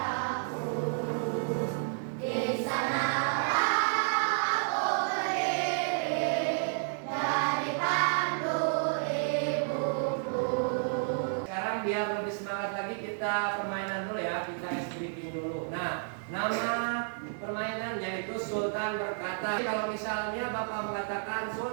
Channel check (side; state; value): left; silent; digital silence